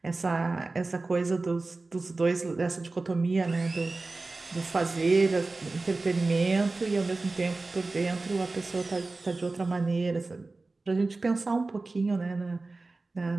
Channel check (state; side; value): quieter; left; 3.4 dB